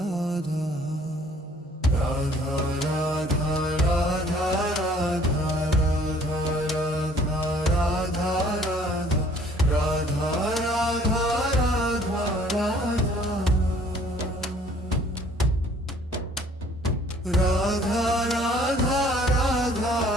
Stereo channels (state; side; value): normal; both; correlation 0.57